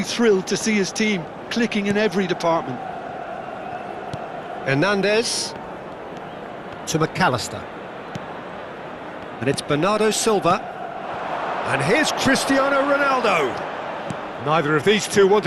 thrilled to see his team clicking in every department. Hernandez to McAllister. And it's Bernardo Silva. And here's Cristiano Ronaldo. Neither of these two want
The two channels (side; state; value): both; identical; correlation 1.00